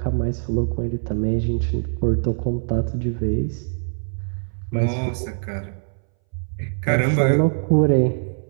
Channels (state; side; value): silent; left; 62 dB below the other